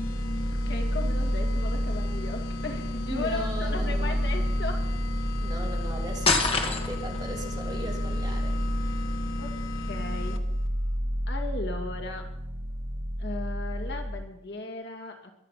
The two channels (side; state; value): both; normal; correlation 0.75